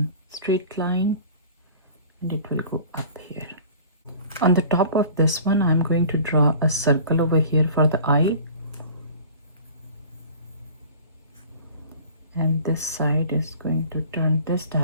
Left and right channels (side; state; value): both; inverted; correlation -0.44